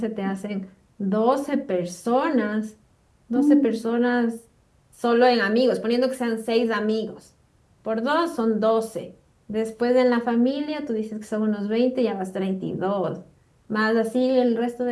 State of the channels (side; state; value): both; identical; correlation 1.00